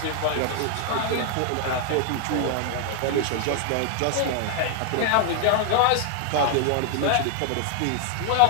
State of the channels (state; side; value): different; both; correlation 0.00